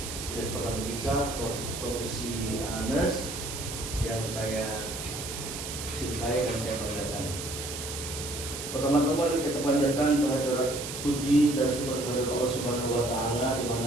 Stikes Pertamedika Profesi ANES yang saya cintai dan saya banggakan. Pertama-tama kita panjatkan kehadirat puji dan syukur kehadirat Allah Subhanahu wa Ta'ala di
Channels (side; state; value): right; noise; hiss, 7 dB below the sound